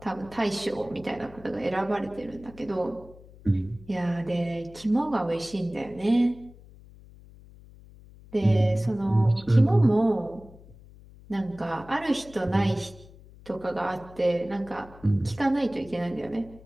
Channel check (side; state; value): left; noise; hum, 21 dB below the sound